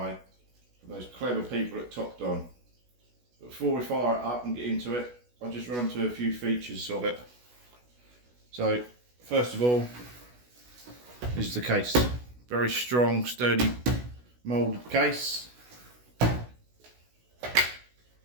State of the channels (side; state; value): left; late; 16 ms